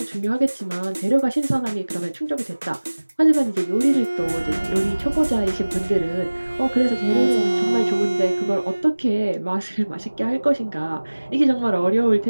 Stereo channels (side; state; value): both; inverted; correlation -1.00